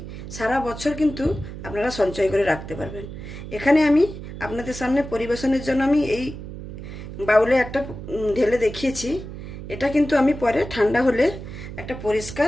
সারা বছর কিন্তু আপনারা সঞ্চয় করে রাখতে পারবেন। এখানে আমি আপনাদের সামনে পরিবেশনের জন্য আমি এই বাউলে একটা ঢেলে দেখিয়েছি। এটা কিন্তু আমি পরে ঠান্ডা হলে একটা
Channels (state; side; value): noise; right; hum, 10 dB below the sound